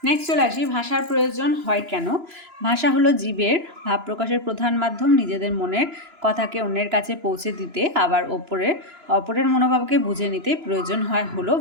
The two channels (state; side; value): late; left; 2.9 ms